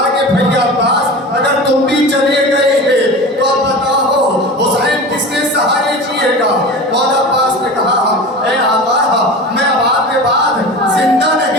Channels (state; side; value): normal; both; correlation 0.32